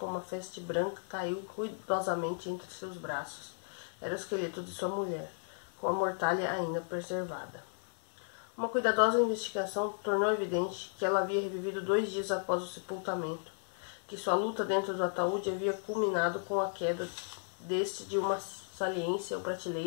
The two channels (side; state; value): right; silent; 55 dB below the other